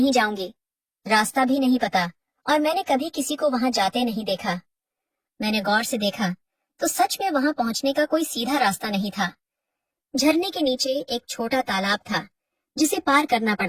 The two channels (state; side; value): identical; both; correlation 1.00